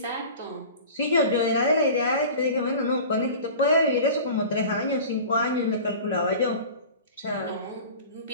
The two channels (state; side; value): inverted; both; correlation -0.38